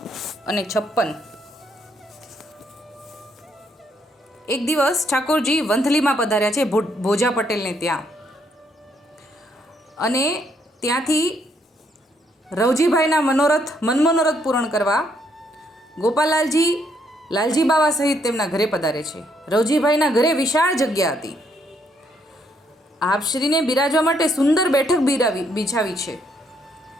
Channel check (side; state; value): both; normal; correlation 0.72